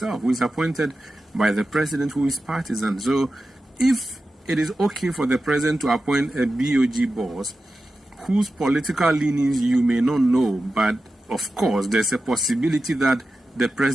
who is appointed by the president, who is partisan. So if it is okay for the president to appoint a BOG boss whose political leanings you may not know, but of course there's a possibility that the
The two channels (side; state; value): both; normal; correlation 0.93